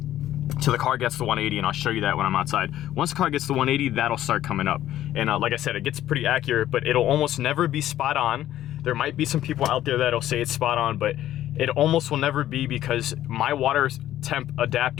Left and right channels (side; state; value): right; quieter; 12.8 dB